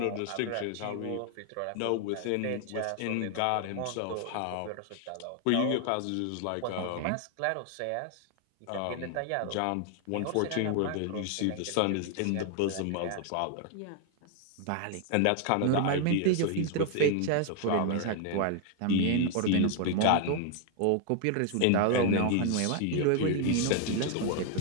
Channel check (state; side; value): different; both; correlation 0.00